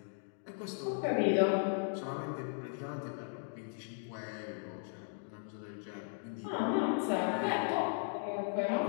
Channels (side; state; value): right; silent; 53 dB below the other